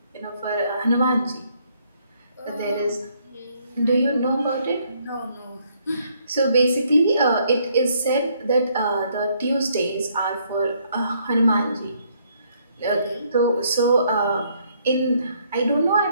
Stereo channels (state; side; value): inverted; both; correlation -0.69